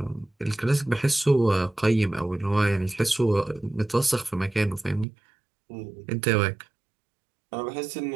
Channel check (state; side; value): drops out; left; at 5.1 s